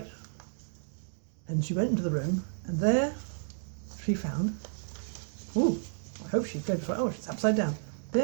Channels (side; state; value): left; silent; digital silence